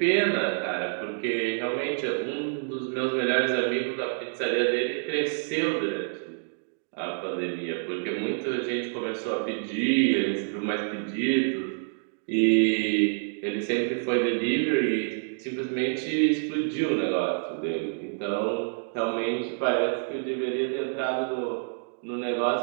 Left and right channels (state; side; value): silent; left; digital silence